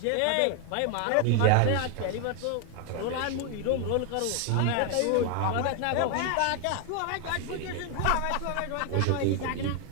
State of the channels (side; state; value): both; different; correlation 0.00